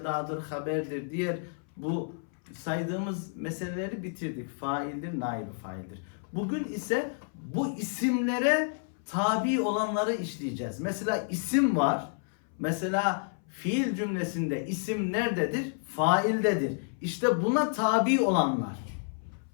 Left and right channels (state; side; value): silent; right; 58 dB below the other